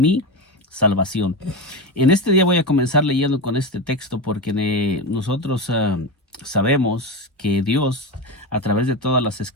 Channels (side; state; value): both; normal; correlation 0.18